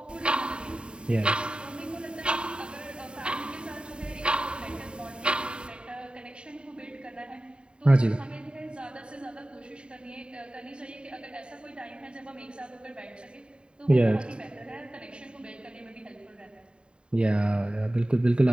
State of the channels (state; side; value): late; left; 0.051 ms